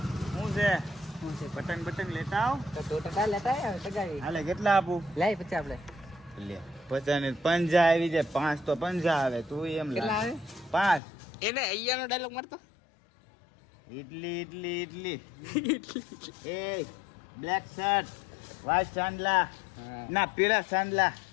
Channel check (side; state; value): right; drops out; at 11.0 s